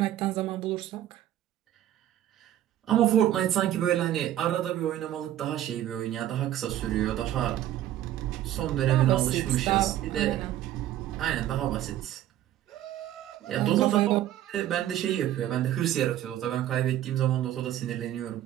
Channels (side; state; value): left; quieter; 12.5 dB